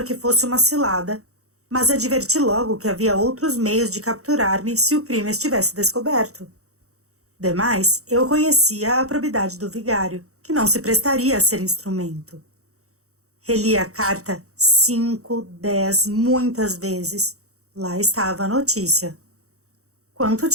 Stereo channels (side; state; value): left; late; 0.65 ms